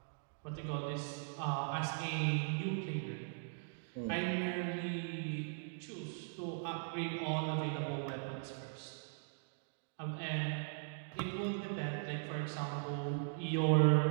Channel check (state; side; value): silent; left; digital silence